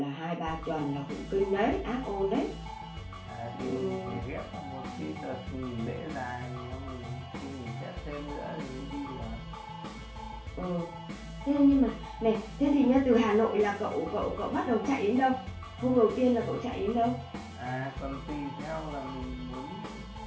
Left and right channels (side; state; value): both; identical; correlation 1.00